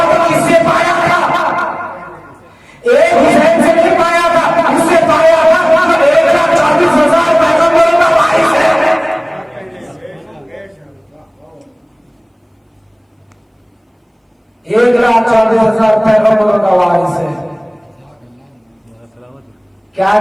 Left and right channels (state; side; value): identical; both; correlation 1.00